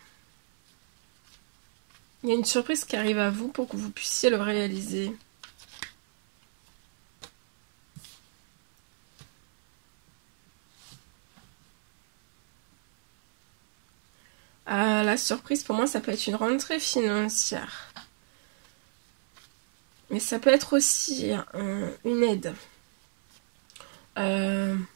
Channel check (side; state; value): left; silent; 59 dB below the other